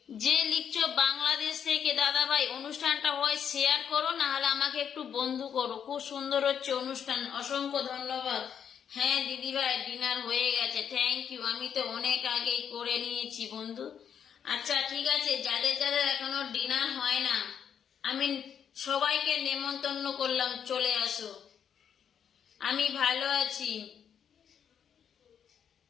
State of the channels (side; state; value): right; quieter; 8.1 dB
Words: যে লিখছো বাংলাদেশ থেকে, দাদা ভাই অনুষ্ঠানটা হয় শেয়ার করো, না হলে আমাকে একটু বন্ধু করো। খুব সুন্দর হচ্ছে অনুষ্ঠান, অসংখ্য ধন্যবাদ। হ্যাঁ দিদিভাই, ডিনার হয়ে গেছে, থ্যাংক ইউ। আমি তো অনেক আগেই করে নিয়েছি বন্ধু। আচ্ছা ঠিক আছে, যাদের যাদের এখনো ডিনার হয় না, আমি সবাইকে নেমন্তন্ন করলাম, চলে আসো। আমি ভালো আছি।